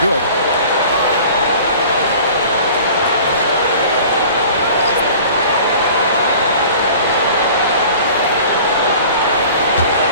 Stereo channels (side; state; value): both; inverted; correlation -0.44